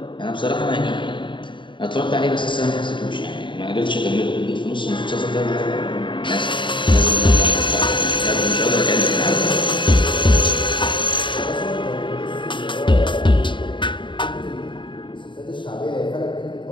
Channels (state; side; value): late; right; 0.23 ms